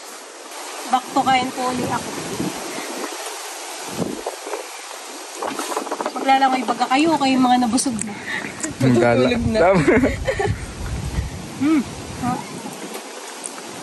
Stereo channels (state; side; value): identical; both; correlation 1.00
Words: Back to kain po ulit ako. maglalangoy baga kayo mga nabusog na. Tulog na.